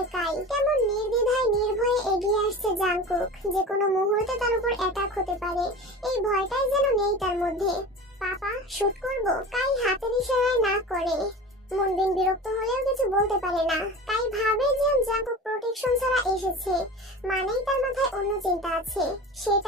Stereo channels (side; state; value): both; normal; correlation 0.34